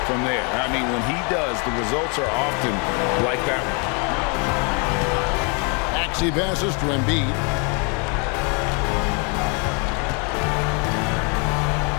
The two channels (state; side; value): quieter; right; 35.5 dB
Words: from there. I mean, when he does, the results are often like that one. Axie passes to Embiid.